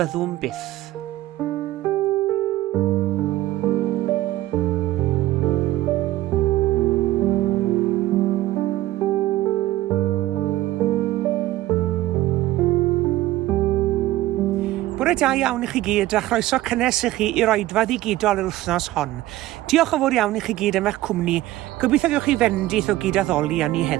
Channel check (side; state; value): left; quieter; 15.9 dB